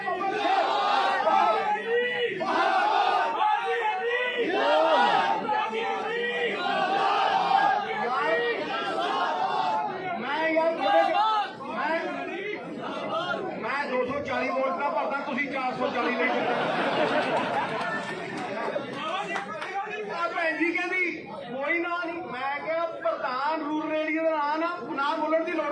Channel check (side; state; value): both; identical; correlation 1.00